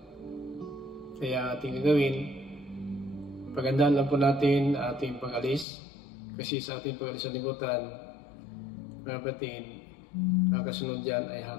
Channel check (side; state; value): right; drops out; at 5.7 s